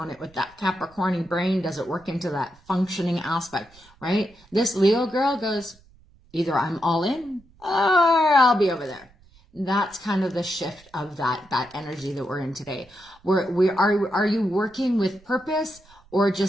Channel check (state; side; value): noise; right; rumble, 28 dB below the sound